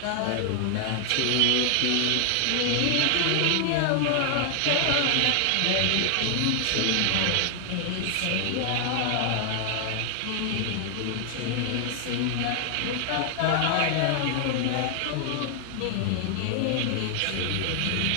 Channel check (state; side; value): different; both; correlation 0.00